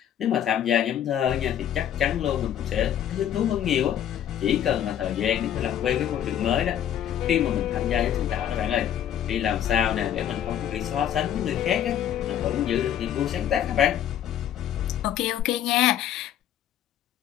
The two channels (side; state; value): right; quieter; 10.3 dB